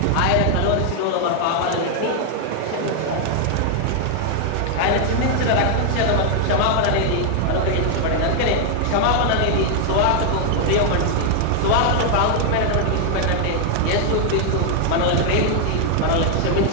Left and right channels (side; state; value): both; different; correlation 0.00